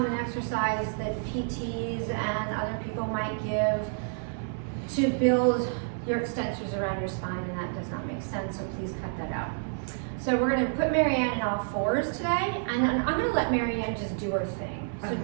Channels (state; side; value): silent; left; 59 dB below the other